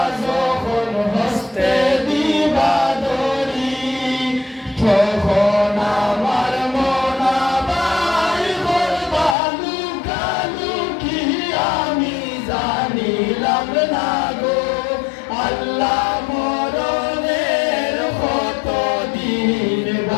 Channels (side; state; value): right; drops out; at 9.3 s